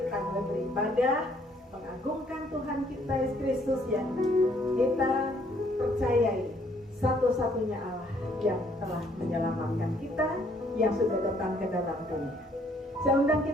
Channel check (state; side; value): normal; both; correlation 0.65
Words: mulai beribadah, mengagungkan Tuhan kita Yesus Kristus yang kita percayai satu-satunya Allah yang telah menyelamatkan kita, yang sudah datang ke dalam dunia. Saya undang